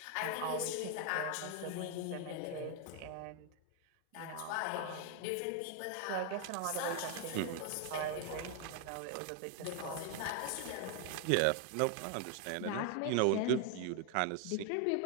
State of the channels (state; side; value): different; both; correlation 0.01